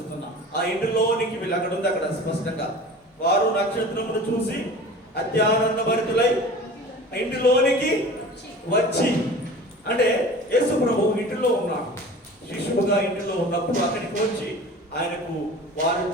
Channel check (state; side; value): normal; both; correlation 0.39